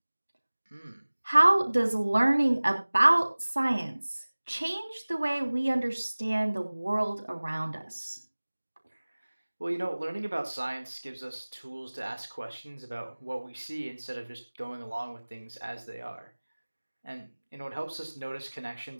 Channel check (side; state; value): both; inverted; correlation -1.00